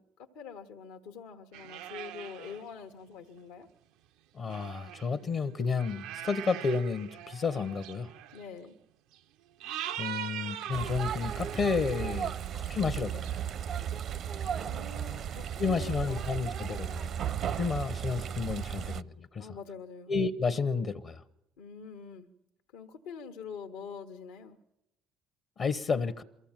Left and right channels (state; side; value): normal; both; correlation 0.68